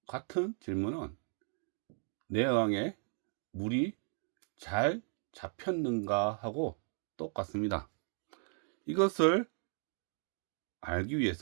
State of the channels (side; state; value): left; silent; 54 dB below the other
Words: 같은 질문은 뇌어항에 물이 잘 잡혔는가 하고 똑같습니다. 이것을 알기